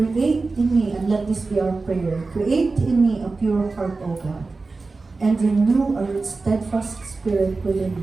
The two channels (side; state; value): left; quieter; 3.8 dB